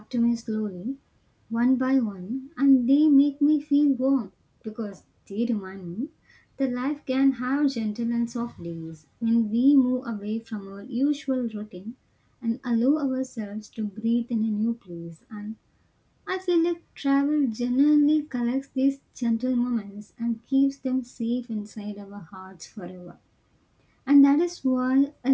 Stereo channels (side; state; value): both; identical; correlation 1.00